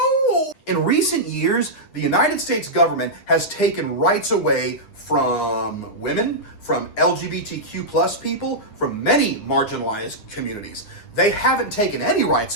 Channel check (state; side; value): late; right; 9.7 ms